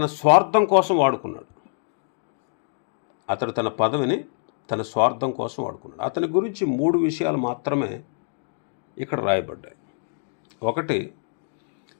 స్వార్థం కోసం వాడుకున్నాడు. అతని గురించి 3 విషయాలు మాత్రమే ఇక్కడ రాయబడ్డాయి. ఒకటి,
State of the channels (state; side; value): silent; right; digital silence